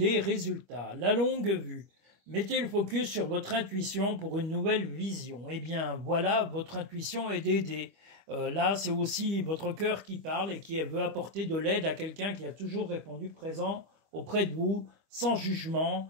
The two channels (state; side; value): late; left; 25 ms